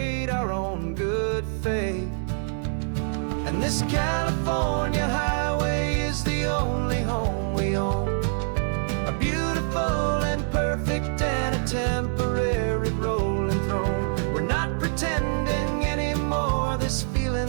our own good faith. And this California highway is the only home we own, a beautiful and perfect and a temporary road.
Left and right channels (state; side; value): silent; left; 60 dB below the other